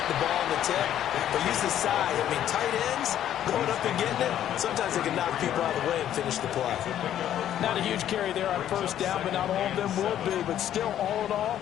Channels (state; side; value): quieter; right; 11.1 dB